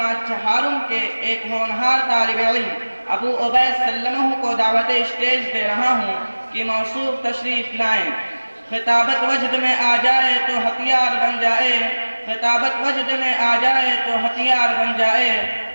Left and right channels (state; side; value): inverted; both; correlation -1.00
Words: چہارم کے ایک ہونہار طالب علم ابو عبید سلمہ کو دعوت اسٹیج دے رہا ہوں کہ موصوف تشریف لائیں۔ خطابت وجد میں آ جائے تو ہتھیار بن جائے، خطابت وجد میں آ جائے تو ہتھیار بن جائے،